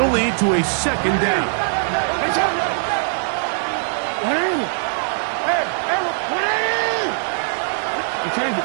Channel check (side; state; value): left; silent; digital silence